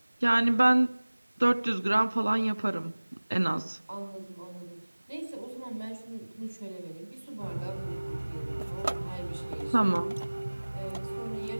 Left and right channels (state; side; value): inverted; both; correlation -1.00